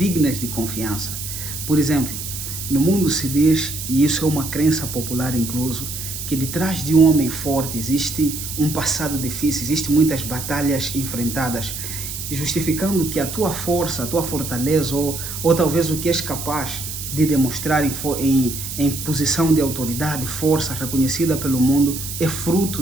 de confiança. Por exemplo, no mundo se diz, e isso é uma crença popular incluso, que detrás de um homem forte existe um passado difícil, existem muitas batalhas enfrentadas, justificando que a tua força, a tua fortaleza ou talvez o que és capaz de demonstrar em posição de autoridade, força reconhecida pelo mundo, é fruto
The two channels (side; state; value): right; noise; hiss, 7 dB below the sound